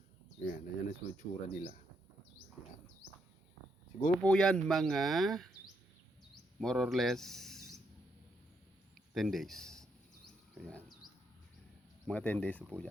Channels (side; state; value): both; normal; correlation 0.77